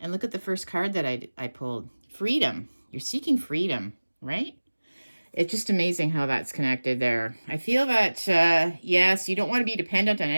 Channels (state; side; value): inverted; both; correlation -1.00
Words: look at the first card that I pulled. Freedom. You're seeking freedom, right? It's just amazing how that's connected there. I feel that, yes, you don't want to be dependent on